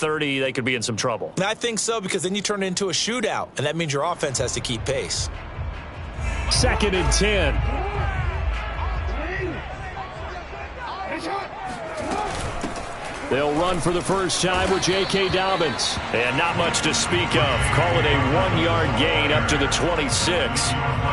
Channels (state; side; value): identical; both; correlation 1.00